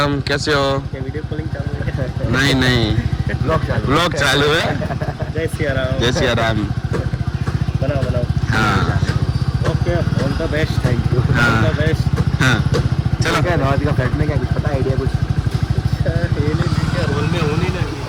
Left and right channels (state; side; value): identical; both; correlation 1.00